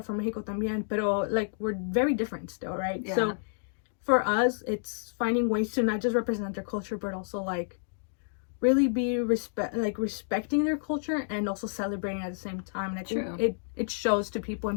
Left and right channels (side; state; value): right; silent; digital silence